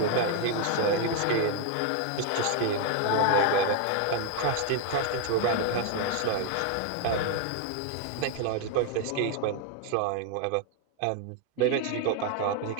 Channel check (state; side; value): different; both; correlation 0.01